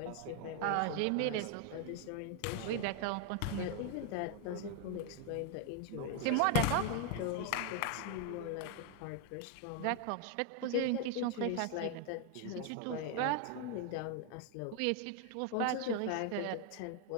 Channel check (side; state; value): both; different; correlation 0.00